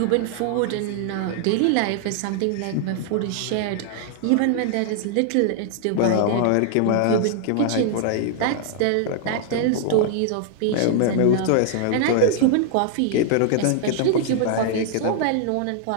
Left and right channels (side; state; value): both; different; correlation -0.01